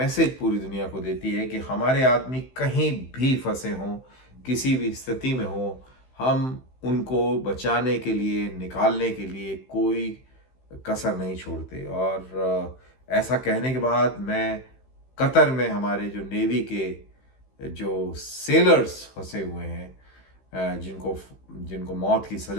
पूरी दुनिया को देती है कि हमारे आदमी कहीं भी फंसे हों, किसी भी स्थिति में हों, हम उनको बचाने के लिए, निकालने के लिए कोई कसर नहीं छोड़ते। और ऐसा कहने के बाद मैं कतर में हमारे जो नेवी के जो सेलर्स फंसे हुए हैं, जिनको जिनको मौत की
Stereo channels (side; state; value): right; late; 15 ms